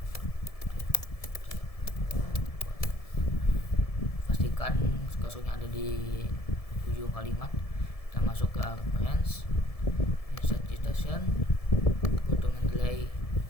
pastikan kursornya ada di ujung kalimat. Kita masuk ke reference, insert citation, go to Mendeley,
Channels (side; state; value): right; late; 1.7 ms